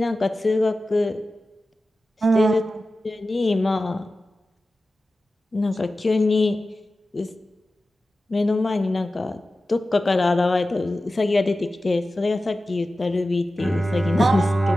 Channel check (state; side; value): normal; both; correlation 0.95